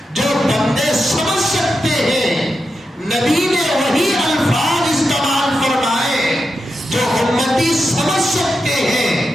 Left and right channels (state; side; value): normal; both; correlation 0.88